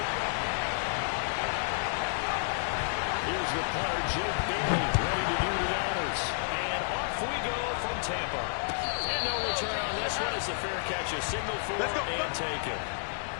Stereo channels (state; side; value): silent; right; digital silence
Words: The punter, Jake Bailey, ready to do the honors. And off we go from Tampa. And no return on this one as the fair catch is signaled for and taken.